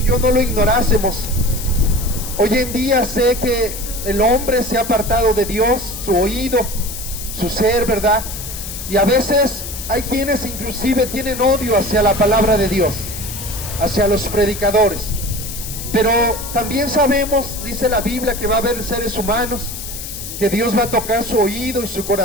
yo no lo ignorásemos. Hoy en día sé que el hombre se ha apartado de Dios, su oído, su ser, ¿verdad? Y a veces hay quienes inclusive tienen odio hacia la palabra de Dios, hacia los predicadores. Pero también sabemos, dice la Biblia, que va a haber seres humanos, que Dios va a tocar su oído y su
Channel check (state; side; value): noise; left; hiss, 9 dB below the sound